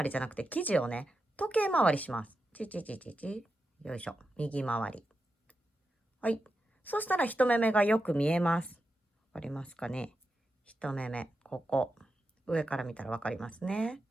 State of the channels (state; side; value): normal; both; correlation 0.88